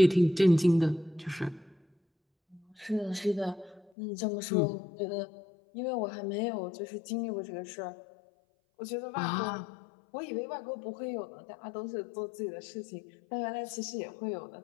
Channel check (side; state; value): right; drops out; at 3.8 s